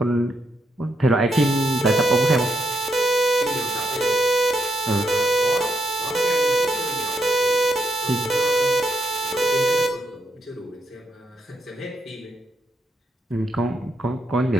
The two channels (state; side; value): normal; both; correlation 0.79